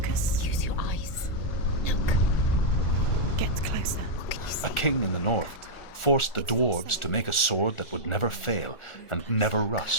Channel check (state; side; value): late; right; 1.4 ms